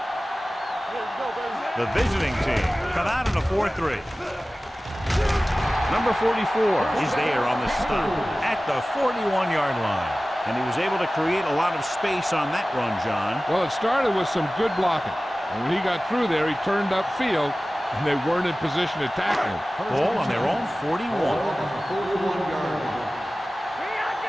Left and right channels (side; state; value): both; normal; correlation 0.97